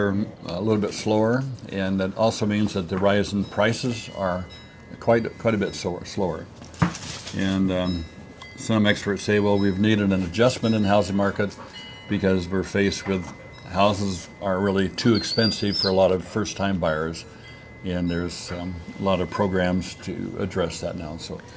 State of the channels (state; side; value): identical; both; correlation 1.00